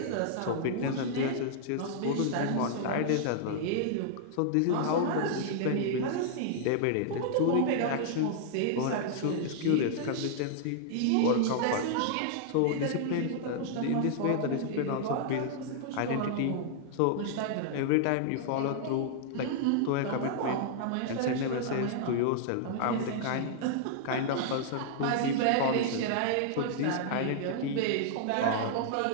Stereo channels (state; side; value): different; both; correlation -0.01